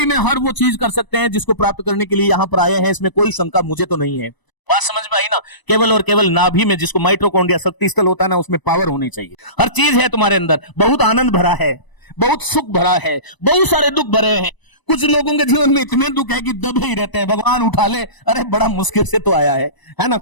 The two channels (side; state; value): right; late; 1.0 ms